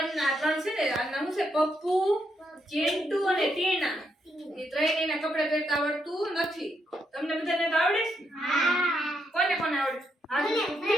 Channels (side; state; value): both; normal; correlation 0.78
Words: છે ને, આ નામ છે પપ્પુ, ચિંટુ અને ટીના. એ ત્રણેયના કપડા પહેરતા આવડતું નથી. તમને બધાને તો આવડે છે? કોને કોને આવડે?